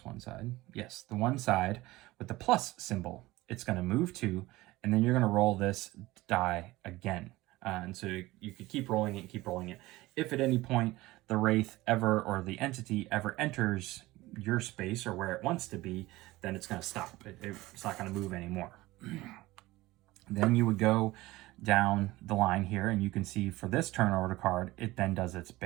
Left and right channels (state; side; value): quieter; left; 19.0 dB